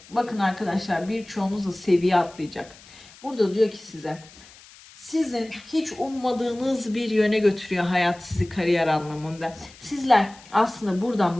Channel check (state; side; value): noise; left; hiss, 22 dB below the sound